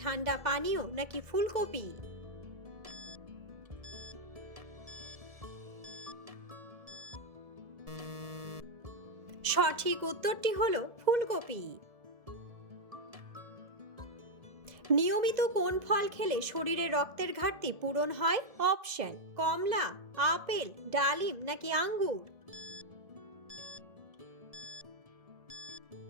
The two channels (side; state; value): left; late; 2.0 ms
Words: ঠান্ডা পানীয় নাকি ফুলকপি? সঠিক উত্তরটি হলো ফুলকপি। নিয়মিত কোন ফল খেলে শরীরে রক্তের ঘাটতি পূরণ হয়? অপশন: কমলা, আপেল, ডালিম নাকি আঙ্গুর?